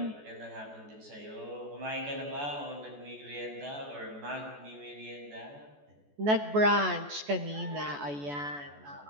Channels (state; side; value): late; left; 14 ms